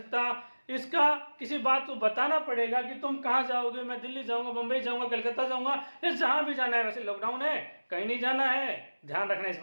इसका किसी बात को बताना पड़ेगा कि तुम कहां जाओगे, मैं दिल्ली जाऊंगा, बंबई जाऊंगा, कलकत्ता जाऊंगा, ये जहां भी जाना है। वैसे लॉकडाउन है, कहीं नहीं जाना है, ध्यान रखना इस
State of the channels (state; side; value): inverted; both; correlation -1.00